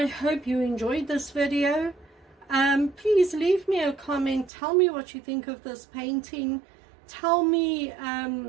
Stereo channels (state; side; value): drops out; left; at 4.5 s